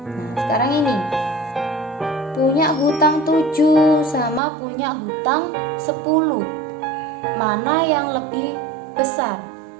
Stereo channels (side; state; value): left; drops out; at 4.4 s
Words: Nah, sekarang ini punya hutang 7 sama punya hutang 10. Mana yang lebih besar?